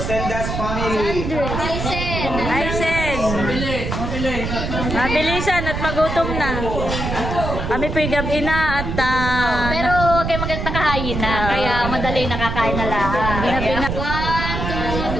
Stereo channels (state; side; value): noise; right; rumble, 3 dB below the sound